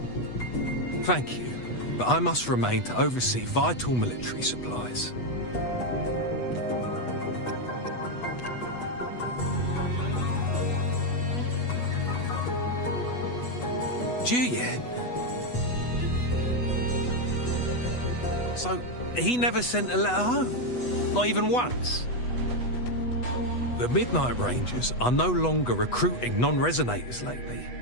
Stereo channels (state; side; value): late; right; 8.2 ms